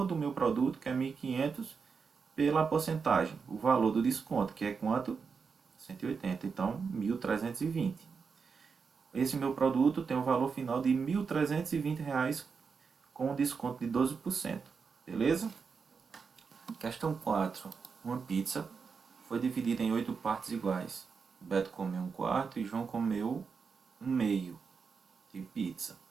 do meu produto, que é 1.500, pela porcentagem, o valor do desconto, que é quanto? 180, então 1.320. Esse meu produto tem um valor final de R$ 1.320, com um desconto de 12%. Beleza? Questão 4. Uma pizza foi dividida em 8 partes iguais. Beto comeu um quarto e João comeu um meio de pizza.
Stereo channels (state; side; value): quieter; left; 5.5 dB